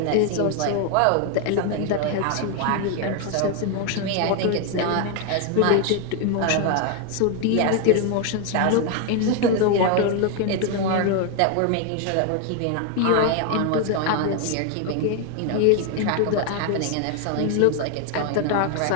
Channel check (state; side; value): different; both; correlation 0.01